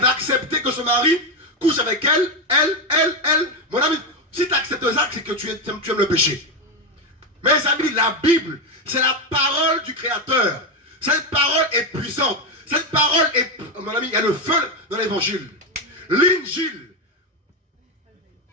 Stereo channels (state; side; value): normal; both; correlation 0.11